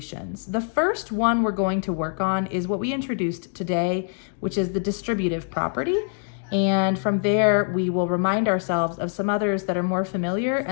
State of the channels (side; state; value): right; silent; digital silence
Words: The first one we're going to work on is what we introduced today, which is the distributive property. And from there, we will remind ourselves of some others that are more familiar